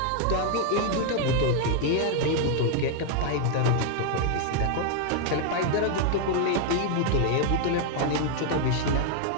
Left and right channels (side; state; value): both; different; correlation 0.00